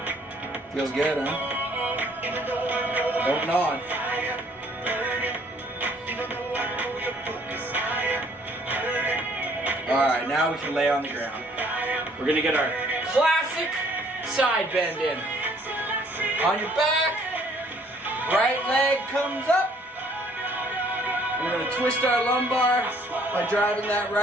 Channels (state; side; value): normal; both; correlation 0.61